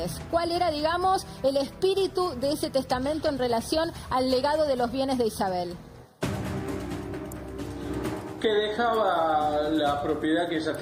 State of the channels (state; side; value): identical; both; correlation 1.00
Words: ¿cuál era, digamos, el espíritu de ese testamento en relación al legado de los bienes de Isabel? Que dejaba la propiedad que ella